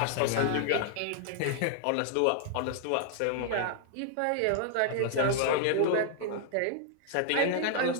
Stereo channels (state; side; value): different; both; correlation 0.00